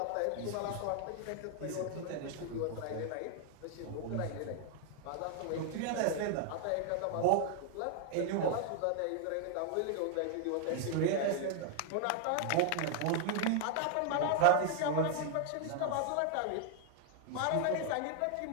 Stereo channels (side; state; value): both; different; correlation 0.00